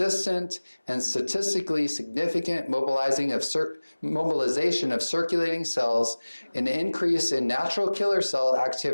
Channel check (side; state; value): both; inverted; correlation -1.00